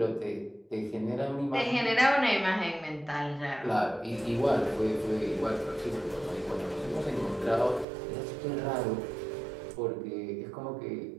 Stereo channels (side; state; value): left; drops out; at 7.9 s